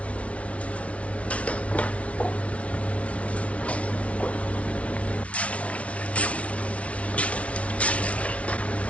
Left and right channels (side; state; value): right; late; 0.063 ms